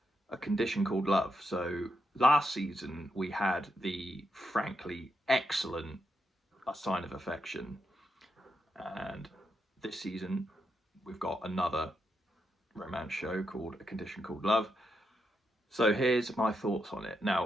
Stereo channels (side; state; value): both; normal; correlation 0.83